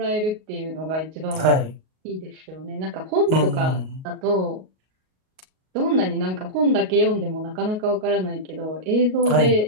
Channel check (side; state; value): left; late; 38 ms